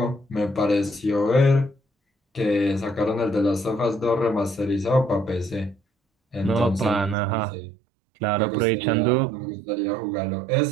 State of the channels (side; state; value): left; drops out; at 7.2 s